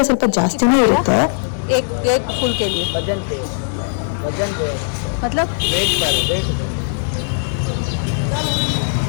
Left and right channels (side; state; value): right; silent; digital silence